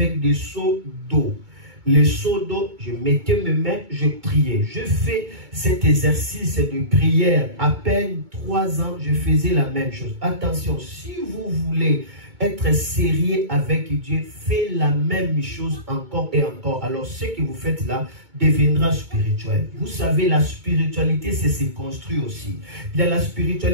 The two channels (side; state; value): left; late; 2.2 ms